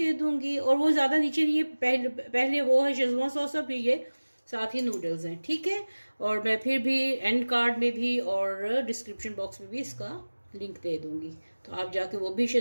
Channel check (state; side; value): inverted; both; correlation -1.00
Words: दूंगी, और वो ज़्यादा नीचे नहीं है, पहले वो है शेज़वान सॉस, और फिर ये साथ ही नूडल्स हैं, ठीक है। और मैं फिर भी एंड कार्ड में भी और डिस्क्रिप्शन बॉक्स में भी इसका लिंक दे दूंगी, तो आप जाके वो भी